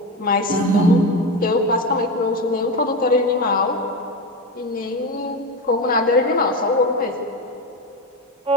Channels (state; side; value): normal; both; correlation 0.18